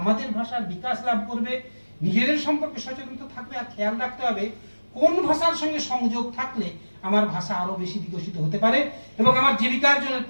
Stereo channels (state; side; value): inverted; both; correlation -1.00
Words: ভাষার বিকাশ লাভ করবে, নিজেদের সম্পর্কে সচেতন থাকবে, আর খেয়াল রাখতে হবে কোন ভাষার সঙ্গে সংযোগ থাকলে আমার ভাষা আরো বেশি বিকশিত হতে পারে এবং আমার জীবিকার্জনের